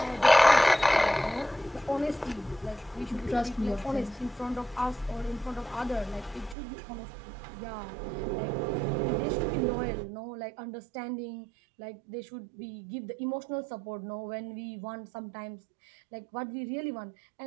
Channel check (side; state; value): left; drops out; at 6.6 s